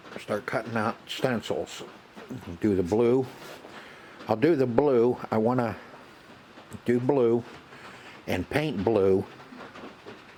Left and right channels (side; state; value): both; identical; correlation 1.00